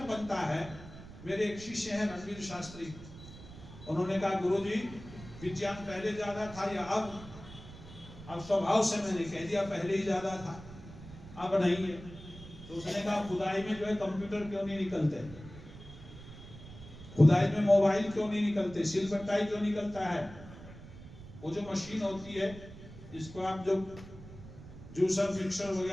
बनता है, मेरे एक शिष्य हैं रणवीर शास्त्री, उन्होंने कहा गुरुजी विज्ञान पहले ज्यादा था या अब? स्वभाव से मैंने कह दिया पहले ही ज्यादा था, अब नहीं है। तो उसने कहा खुदाई में जो है कंप्यूटर क्यों नहीं निकलते? खुदाई में मोबाइल क्यों नहीं निकलते, सिल बट्टाई क्यों निकलता है? वो जो मशीन होती है जिसको आप जो जूसर मिक्सर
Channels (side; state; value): right; noise; rumble, 15 dB below the sound